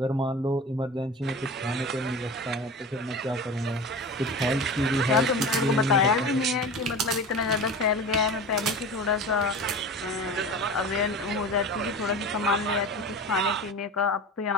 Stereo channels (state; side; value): normal; both; correlation 0.32